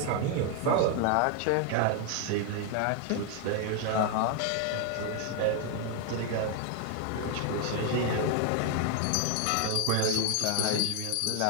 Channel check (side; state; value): both; different; correlation 0.00